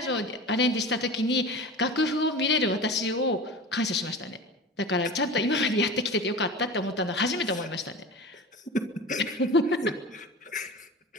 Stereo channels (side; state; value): both; normal; correlation 0.33